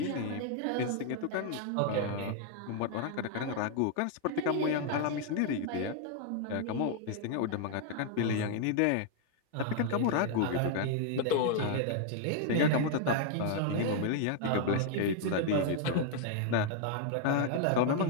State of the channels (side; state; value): both; different; correlation 0.00